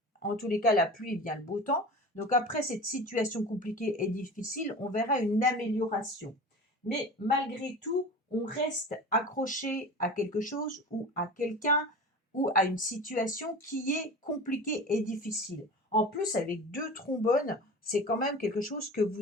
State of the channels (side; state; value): both; normal; correlation 0.34